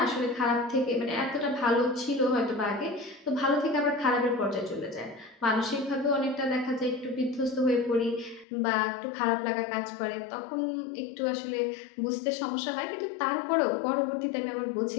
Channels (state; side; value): drops out; right; at 8.5 s